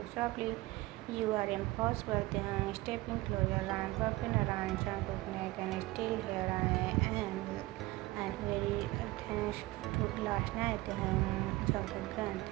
softly, you are impossible. Then stepping closer, I'm wrapping around Jungkook's neck and still here I am. And very thanks to last night, Jungkook grunt.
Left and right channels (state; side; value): quieter; left; 19.6 dB